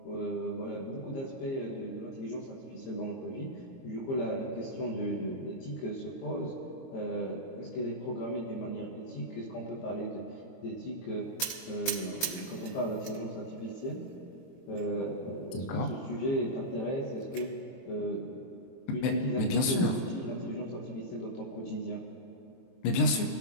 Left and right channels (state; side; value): late; right; 22 ms